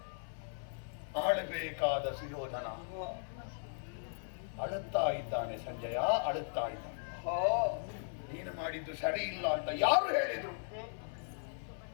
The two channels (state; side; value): silent; right; 53 dB below the other